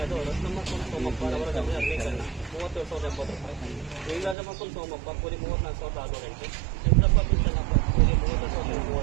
ಅದು ರತ್ನಮಪ್ಪ ಸೋಮಪ್ಪ ಅವರ ಜಮೀನು ಅರಣ್ಯೀಕರಣ 37,070, ಲಿಂಗರಾಜಪ್ಪ ಸೋಮಪ್ಪ ಕೂಲಿ 34,608, ಚಂದ್ರಪ್ಪ ಬಿನ್ ಚೆನ್ನಪ್ಪ ಕೂಲಿ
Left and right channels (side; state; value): left; drops out; at 4.4 s